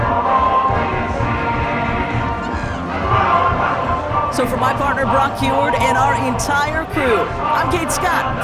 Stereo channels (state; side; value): identical; both; correlation 1.00